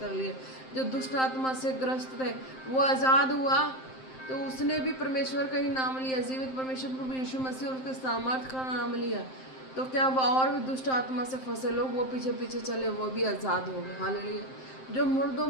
कर लिए। जो दुष्ट आत्मा से ग्रस्त थे वो आज़ाद हुआ, तो उसने भी परमेश्वर का ही नाम लिया, जीवित परमेश्वर प्रभु यीशु मसीह और उसके सामर्थ का नाम लिया। तो क्या वो और भी दुष्ट आत्मा से फंसे लोग वो पीछे पीछे चले, वो भी आज़ाद हो गए। हालेलुया। जो मुर्दों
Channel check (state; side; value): late; right; 7.7 ms